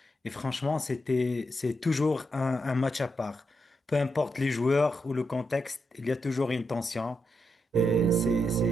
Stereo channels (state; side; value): normal; both; correlation 0.83